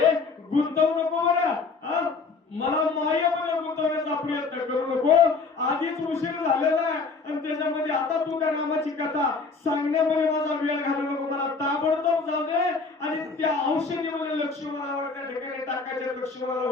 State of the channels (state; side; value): quieter; right; 4.4 dB